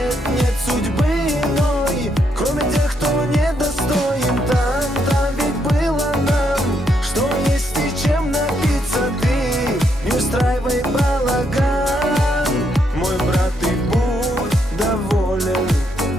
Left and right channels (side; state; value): both; normal; correlation 0.76